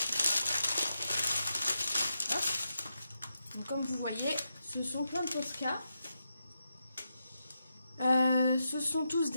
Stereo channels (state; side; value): inverted; both; correlation -0.85